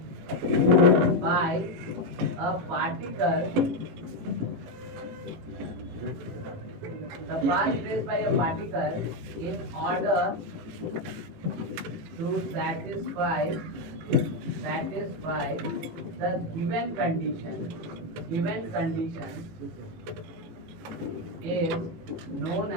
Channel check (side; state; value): left; late; 18 ms